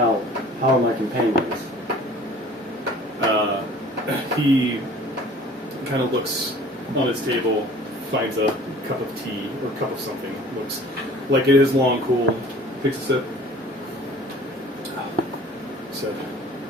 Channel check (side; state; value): both; normal; correlation 0.48